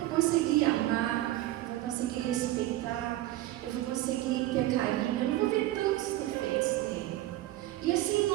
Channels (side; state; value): left; quieter; 15.7 dB